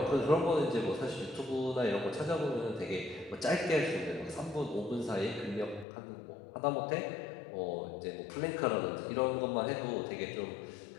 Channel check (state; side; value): drops out; right; at 5.9 s